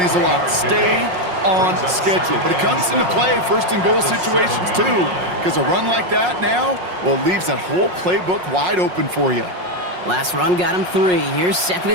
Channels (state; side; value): late; left; 5.5 ms